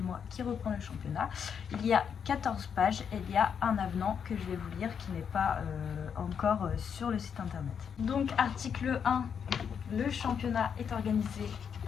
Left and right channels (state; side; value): quieter; right; 7.3 dB